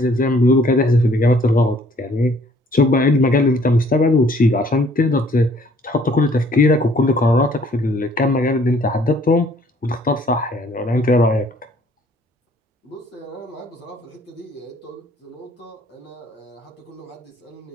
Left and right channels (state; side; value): normal; both; correlation 0.60